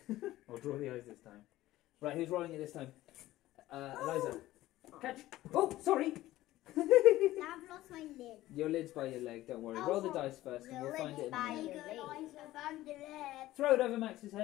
I'll draw the eyes this time. Right, who's rolling it this time? Eliza. Catch. Oh, sorry. Now I've lost my lid. Your lid's by your leg, don't worry. Roll the dice first and we'll find it in a minute. Lid. Throw it over Max's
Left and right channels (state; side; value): quieter; right; 15.9 dB